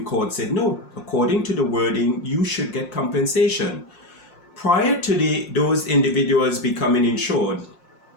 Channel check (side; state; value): right; late; 5.6 ms